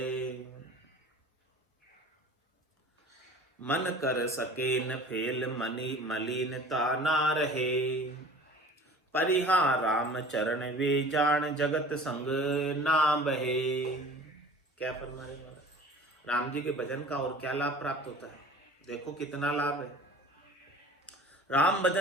मन कर सके न फेल मनी मलिनता ना रहे, परिहा राम चरण वे जान जगत संग ना बहे। क्या फरमा रहे महाराज? राम जी के भजन का और क्या लाभ प्राप्त होता है? देखो कितना लाभ है। राम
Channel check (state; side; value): normal; both; correlation 0.44